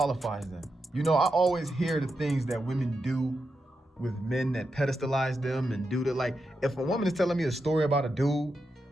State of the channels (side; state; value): both; normal; correlation 0.87